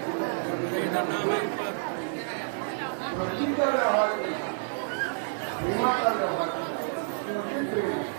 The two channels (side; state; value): left; silent; 59 dB below the other